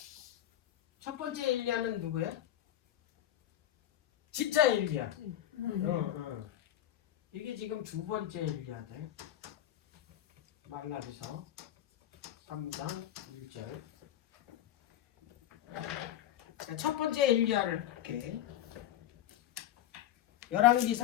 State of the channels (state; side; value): quieter; right; 12.2 dB